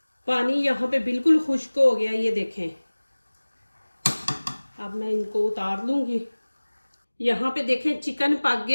पानी यहाँ पे बिल्कुल खुश्क हो गया, ये देखें। अब मैं इनको उतार लूंगी। यहाँ पे देखें चिकन पक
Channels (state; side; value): inverted; both; correlation -1.00